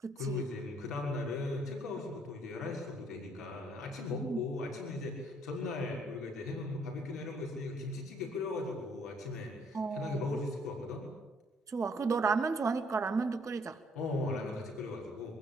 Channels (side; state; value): both; normal; correlation 0.64